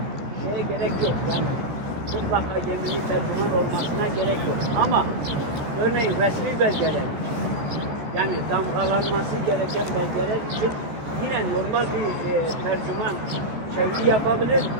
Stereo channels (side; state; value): left; late; 14 ms